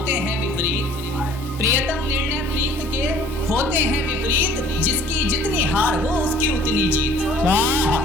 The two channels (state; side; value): normal; both; correlation 0.53